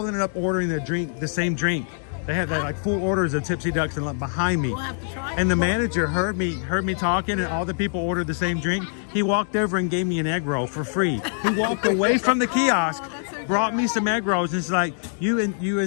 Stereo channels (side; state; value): right; silent; 63 dB below the other